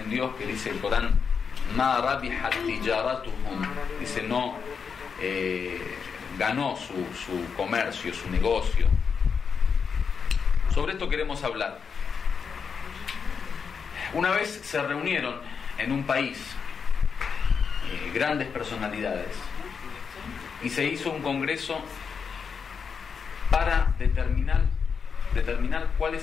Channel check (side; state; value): right; quieter; 6.1 dB